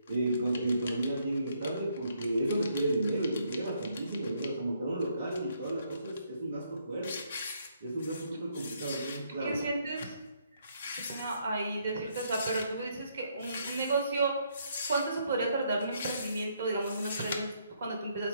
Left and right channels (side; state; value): both; inverted; correlation -0.72